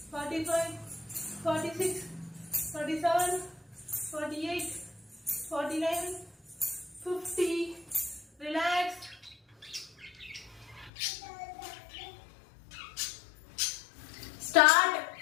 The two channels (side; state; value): right; drops out; at 10.9 s